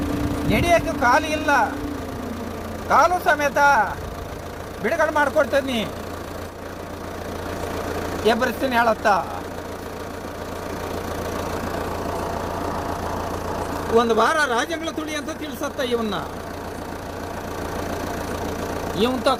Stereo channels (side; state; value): both; identical; correlation 1.00